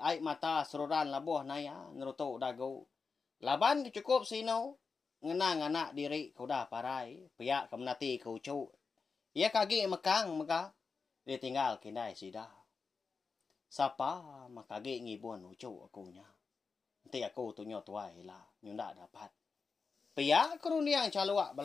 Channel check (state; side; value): quieter; right; 4.9 dB